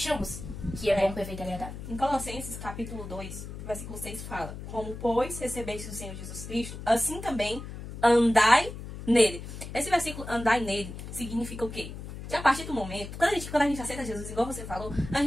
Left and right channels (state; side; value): noise; left; hum, 10 dB below the sound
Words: que é bom, perfeito e agradável. Em Colossenses, capítulo 2, versículo 6 fala: como, pois, recebeste o Senhor Jesus Cristo, assim também andai nele. Esse versículo, andai nele, significa o quê? Que a partir do momento, quando a gente aceita Jesus, igual você falou, a